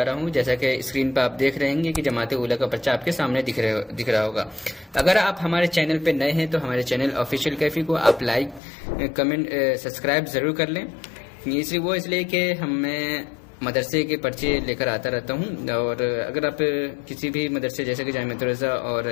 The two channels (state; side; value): drops out; right; at 8.6 s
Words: रहा हूं। जैसा कि स्क्रीन पर आप देख रहे हैं कि जमात ऊला का पर्चा आपके सामने दिख रहा होगा। अगर आप हमारे चैनल पर नए हैं तो हमारे चैनल ऑफिशियल कैफी को आप लाइक कमेंट सब्सक्राइब जरूर कर लें। इसलिए कि मैं मदरसे के पर्चे लेकर आता रहता हूं, और अगर आप किसी भी मदरसे जैसे कि जामियातुर रज़ा और